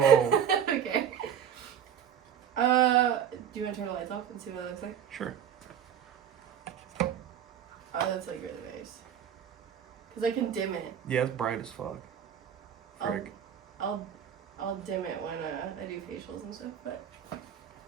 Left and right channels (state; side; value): quieter; left; 8.8 dB